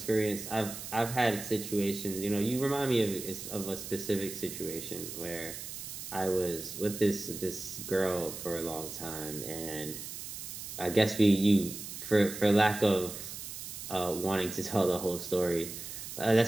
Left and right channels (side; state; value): right; noise; hiss, 9 dB below the sound